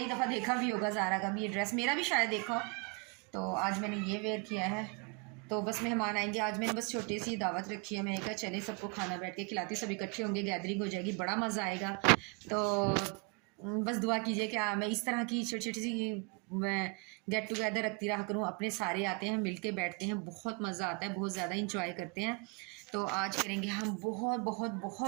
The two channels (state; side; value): quieter; left; 31.3 dB